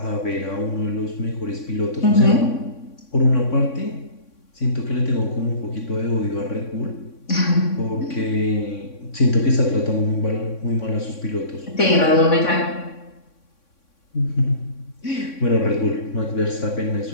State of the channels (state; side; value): late; right; 3.6 ms